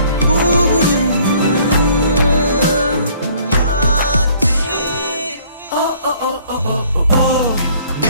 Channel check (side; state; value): both; inverted; correlation -0.58